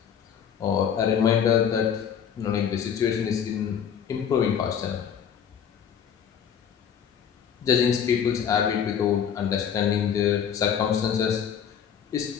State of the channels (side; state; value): right; quieter; 8.1 dB